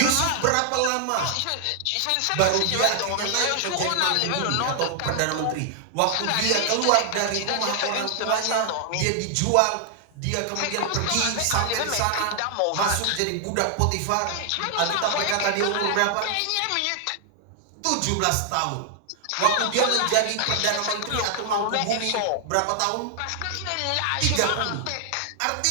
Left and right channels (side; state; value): both; different; correlation 0.00